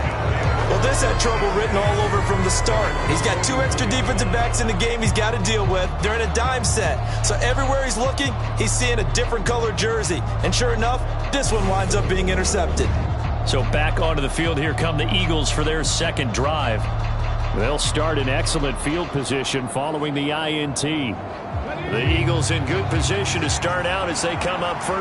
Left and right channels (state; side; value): identical; both; correlation 1.00